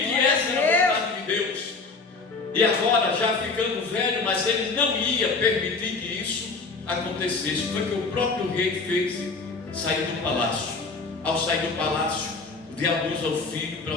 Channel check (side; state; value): right; quieter; 4.1 dB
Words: que essa era a vontade de Deus. E agora, já ficando velho, mas ele não ia permitir que isso acontecesse. Foi o que o próprio rei fez, sair do palácio. Ao sair do palácio, o diabo usa o filho